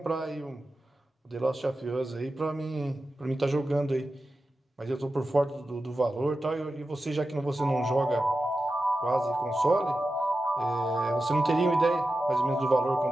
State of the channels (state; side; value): normal; both; correlation 0.92